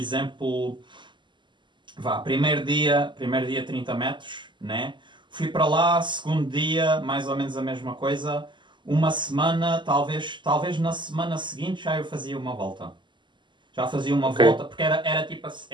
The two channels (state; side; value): late; left; 0.22 ms